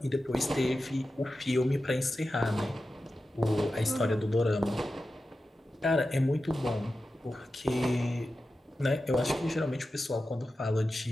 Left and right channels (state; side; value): normal; both; correlation 0.92